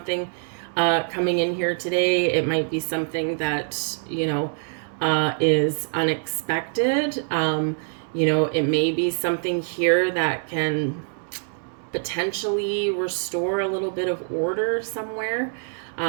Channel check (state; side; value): silent; left; 56 dB below the other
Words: coming in here today. It might be something that, is unexpected. It may be something here that can potentially restore a little bit of order somewhere.